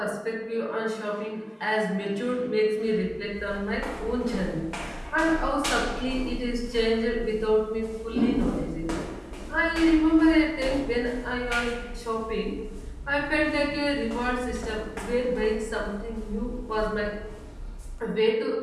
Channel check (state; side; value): identical; both; correlation 1.00